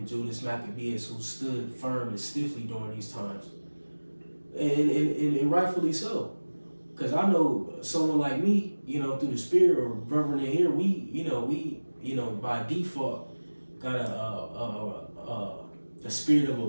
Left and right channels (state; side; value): inverted; both; correlation -1.00